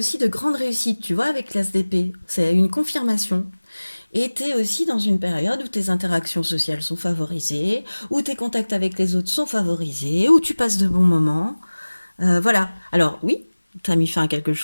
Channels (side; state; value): both; inverted; correlation -1.00